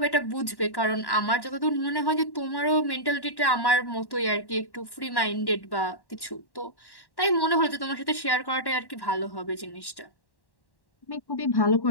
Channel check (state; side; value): late; right; 1.1 ms